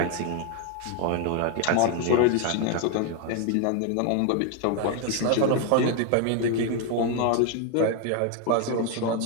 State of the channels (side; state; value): both; different; correlation 0.01